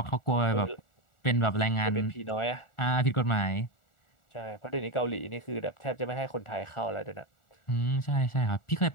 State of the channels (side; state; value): right; late; 1.4 ms